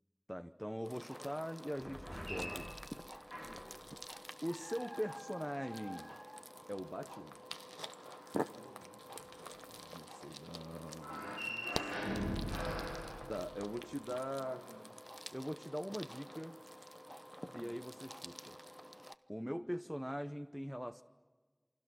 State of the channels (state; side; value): identical; both; correlation 1.00